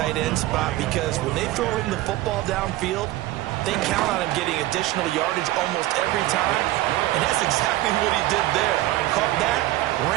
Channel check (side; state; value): left; quieter; 16.6 dB